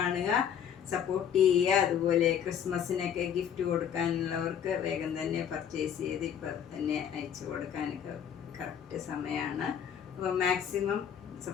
സപ്പോർട്ട് ചെയ്യുക. അതുപോലെ ക്രിസ്മസിനൊക്കെ ഗിഫ്റ്റ് കൊടുക്കാനുള്ളവർക്ക് വേഗം തന്നെ പർച്ചേസ് ചെയ്ത് ഇപ്പം തന്നെ അയച്ചു കൊടുക്കാനൊക്കെ കറക്റ്റ് സമയമാണ്. അപ്പോൾ മാക്സിമം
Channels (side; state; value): right; quieter; 8.6 dB